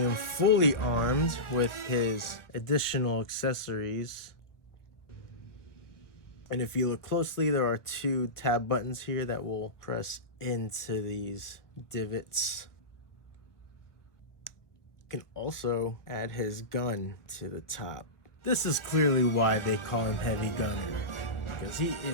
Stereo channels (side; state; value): right; late; 1.4 ms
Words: fully armed with his additional accessories, and if you look closely, there are 2 tab buttons here that will press into these divots. You can also add his gun to the top. This is clearly why they call him Heavy Gunner, because he